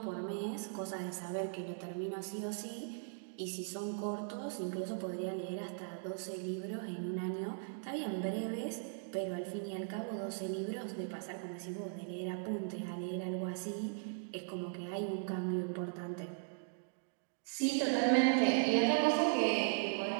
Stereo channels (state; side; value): silent; left; digital silence